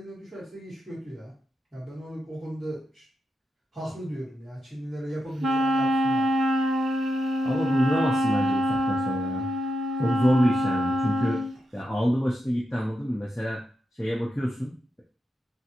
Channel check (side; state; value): both; normal; correlation 0.86